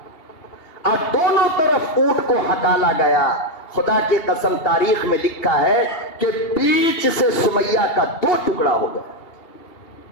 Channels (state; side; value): late; right; 2.8 ms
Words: اور دونوں طرف اونٹ کو ہکالا گیا. خدا کی قسم تاریخ میں لکھا ہے کہ بیچ سے سمیہ کا 2 ٹکڑا ہو گیا،